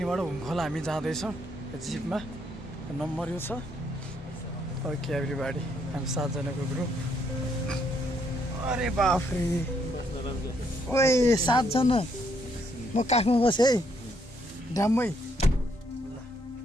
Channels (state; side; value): normal; both; correlation 0.72